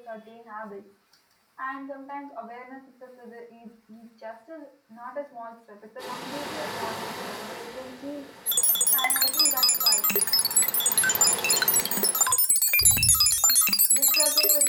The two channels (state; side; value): identical; both; correlation 1.00